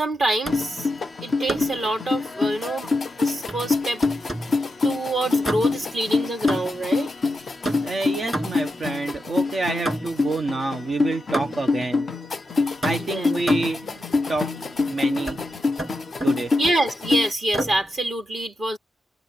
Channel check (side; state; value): both; normal; correlation 0.87